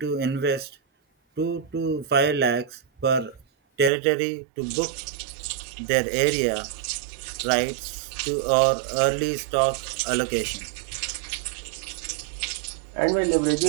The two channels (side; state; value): left; drops out; at 3.9 s